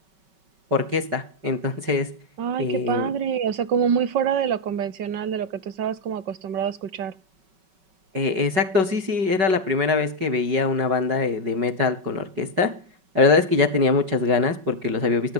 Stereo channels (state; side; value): late; left; 5.3 ms